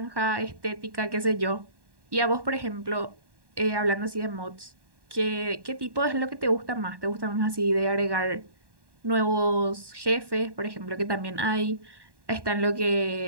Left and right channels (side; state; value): left; late; 1.1 ms